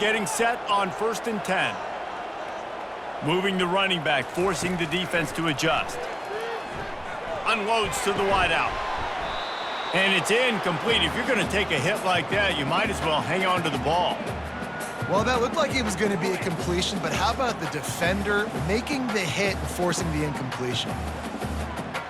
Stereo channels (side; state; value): both; identical; correlation 1.00